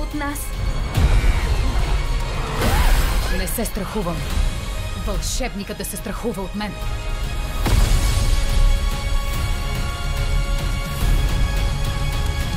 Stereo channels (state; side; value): identical; both; correlation 1.00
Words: нас. Не се страхувам. Вълшебникът да се страхува от мен.